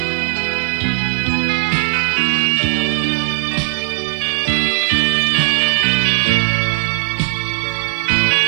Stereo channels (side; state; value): left; silent; 68 dB below the other